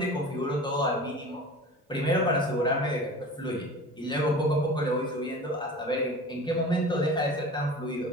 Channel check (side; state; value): both; normal; correlation 0.37